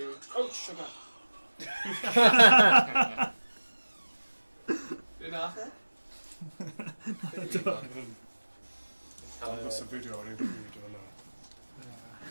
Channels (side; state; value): both; inverted; correlation -1.00